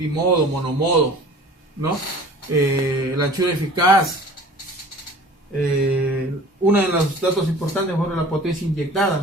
monomodo, ¿no? La anchura eficaz. Uno de los datos importantes fue la potencia inyectada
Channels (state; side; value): normal; both; correlation 0.45